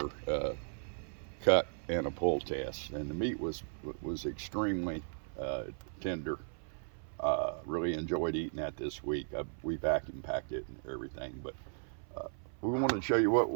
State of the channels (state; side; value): silent; left; 54 dB below the other